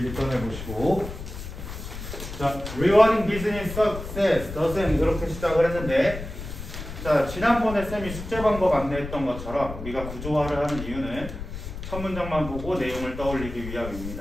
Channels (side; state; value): left; noise; rumble, 9 dB below the sound